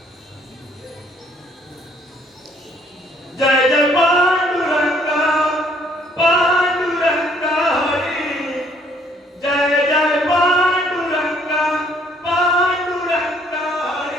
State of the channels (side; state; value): both; normal; correlation 0.63